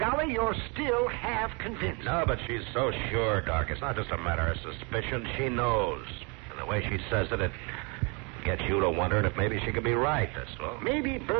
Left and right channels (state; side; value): quieter; left; 31.7 dB